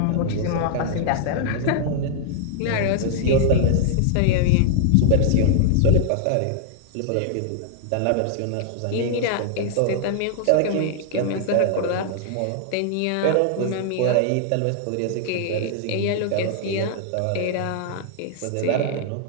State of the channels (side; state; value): both; different; correlation -0.01